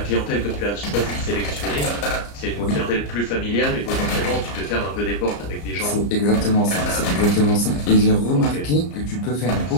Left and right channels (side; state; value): right; late; 34 ms